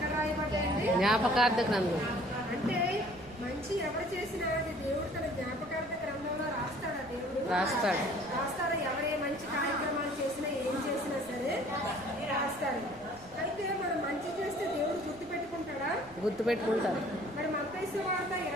రాయబడ్డాయండి? జ్ఞాపకార్థ గ్రంథం. అంటే మంచి ఎవరు చేసినా అది దేవుడు తన జ్ఞాపకార్థ గ్రంథంలో రాస్తాడా? దేవుడు రాస్తాడా? ఎవరే మంచి కార్యక్రమాలు చేసినా, ఏం చేసినా సరే రాస్తాడు. అయితే మనం మంచి చేస్తే దేవుడు గుర్తుపెట్టుకుంటారు. మరి మత్తయి సువార్త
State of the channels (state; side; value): noise; right; rumble, 23 dB below the sound